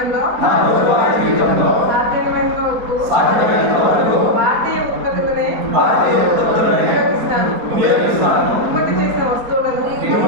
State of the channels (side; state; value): left; late; 4.2 ms